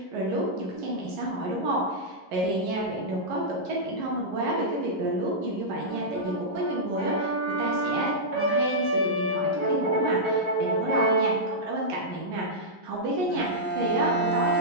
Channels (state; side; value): late; left; 11 ms